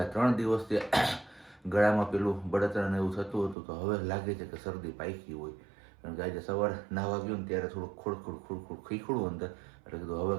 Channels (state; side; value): drops out; left; at 3.6 s